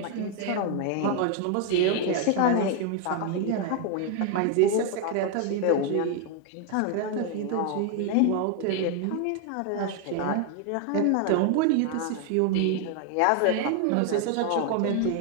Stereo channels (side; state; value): both; different; correlation 0.01